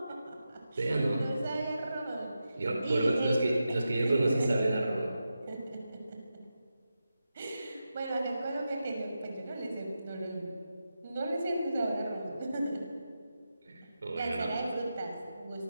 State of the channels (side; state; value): both; inverted; correlation -0.90